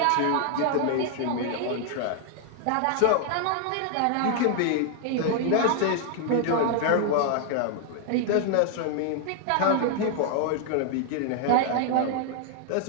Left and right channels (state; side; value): different; both; correlation 0.00